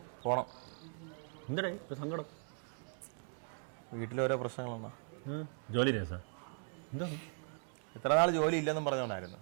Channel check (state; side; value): silent; left; 52 dB below the other